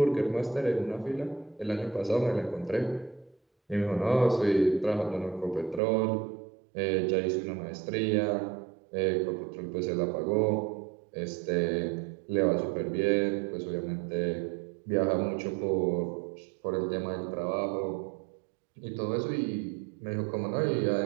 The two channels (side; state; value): left; drops out; at 5.8 s